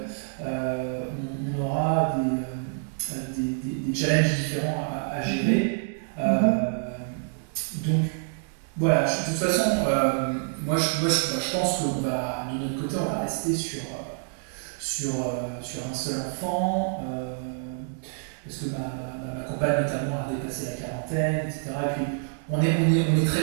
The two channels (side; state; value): left; silent; 60 dB below the other